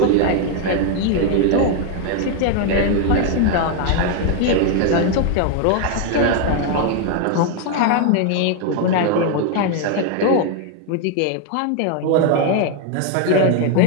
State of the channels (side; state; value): both; different; correlation 0.01